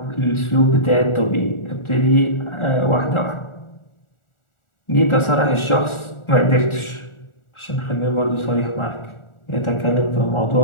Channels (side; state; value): right; late; 1.4 ms